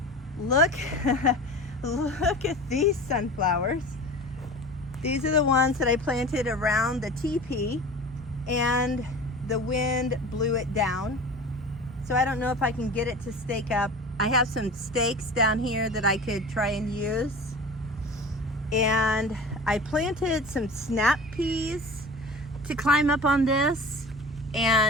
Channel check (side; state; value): both; normal; correlation 0.37